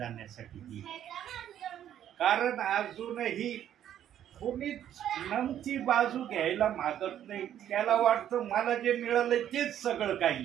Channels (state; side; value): quieter; left; 10.7 dB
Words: येईल. कारण अजूनही कोणीच नमती बाजू घ्यायला मागत नाही. त्याला वाटतं मला जे मिळालं तेच सगळं